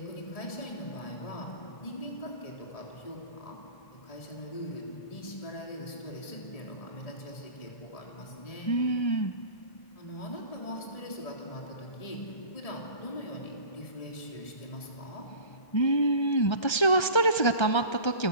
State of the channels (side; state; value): right; late; 1.3 ms